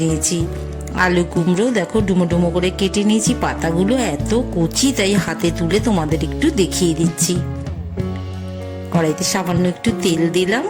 নিয়েছি। আলু কুমড়ো দেখো ডুমো ডুমো করে কেটে নিয়েছি। পাতাগুলো এত কচি তাই হাতে তুলে তোমাদের একটু দেখিয়ে দিচ্ছি। কড়াইতে সামান্য একটু তেল দিলাম,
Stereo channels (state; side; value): identical; both; correlation 1.00